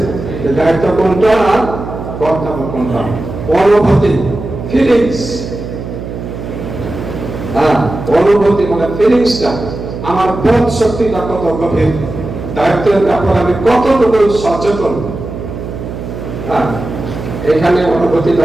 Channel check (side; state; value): right; noise; hum, 8 dB below the sound